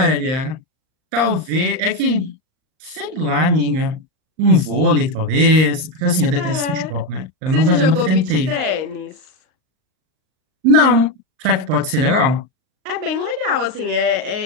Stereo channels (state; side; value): late; left; 38 ms